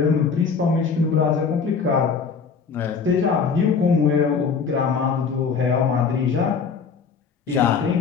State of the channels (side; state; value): right; quieter; 5.8 dB